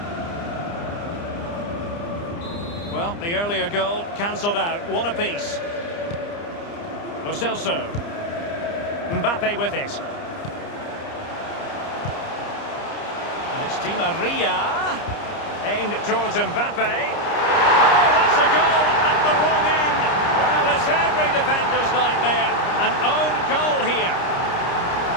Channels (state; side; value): late; right; 29 ms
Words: Well, the earlier goal cancelled out. One apiece. Lo Celso. Mbappe with it. It's Di Maria, aimed towards Mbappe. Oh, that's a goal at the wrong end. Well, it's every defender's nightmare. An own goal here.